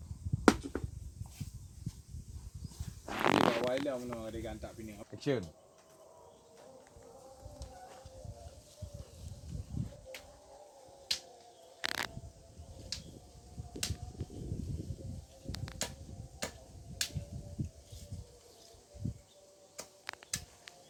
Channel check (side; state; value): both; identical; correlation 1.00